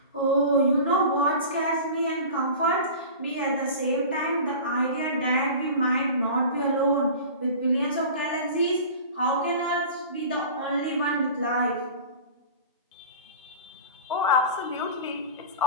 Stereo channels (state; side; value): inverted; both; correlation -0.35